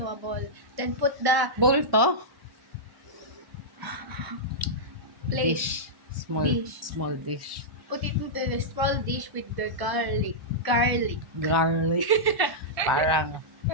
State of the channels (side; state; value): left; late; 1.1 ms